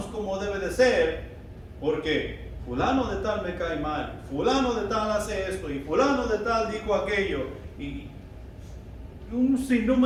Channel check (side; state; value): both; identical; correlation 1.00